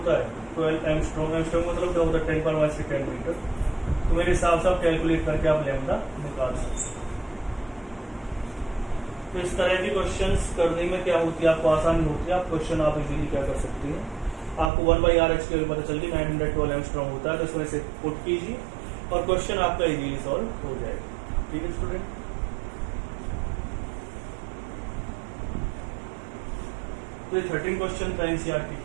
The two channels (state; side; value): drops out; left; at 14.7 s